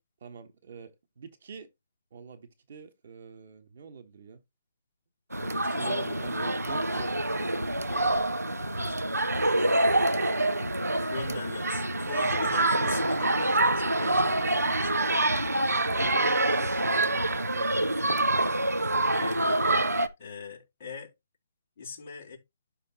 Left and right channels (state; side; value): inverted; both; correlation -0.70